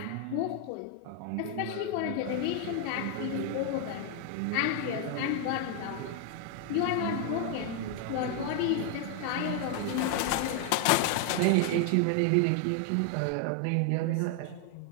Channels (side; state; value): both; different; correlation 0.00